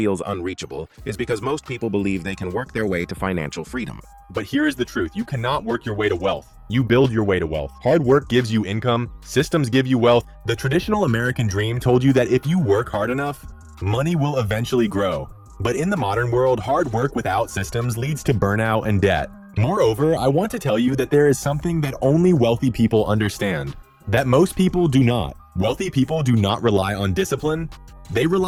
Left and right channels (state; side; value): identical; both; correlation 1.00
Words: unreachable is because most people believe they can work their way to financial freedom. But here is the truth. You cannot work your way to wealth. You build your way to wealth. Hard work gives you income. Systems give you wealth. The traditional American dream told you that if you work hard enough, money will eventually grow. But in the modern world, hard work without systems leads to burnout and debt. Moreover, I want to tell you that there is something that only wealthy people understand, that most people do not. Wealthy people do not rely on discipline. They